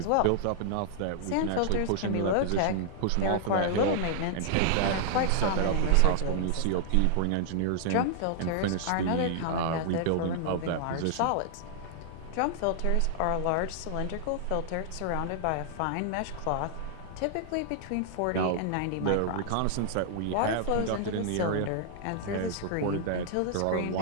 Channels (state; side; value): different; both; correlation -0.01